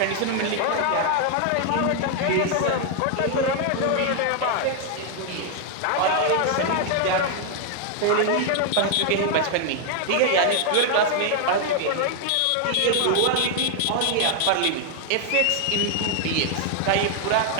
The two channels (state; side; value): different; both; correlation 0.00